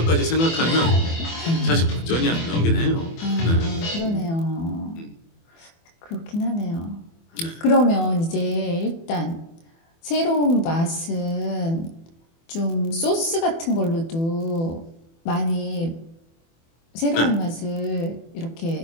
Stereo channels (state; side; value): late; right; 24 ms